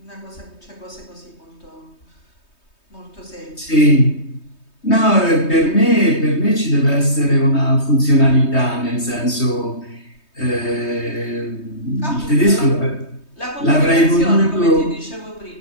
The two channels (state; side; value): late; right; 3.2 ms